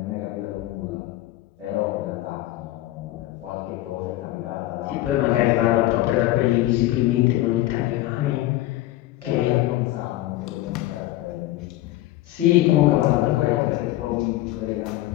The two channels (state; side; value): quieter; right; 15.9 dB